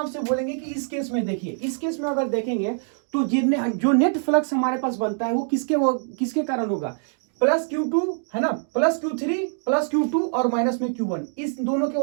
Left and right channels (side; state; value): left; silent; digital silence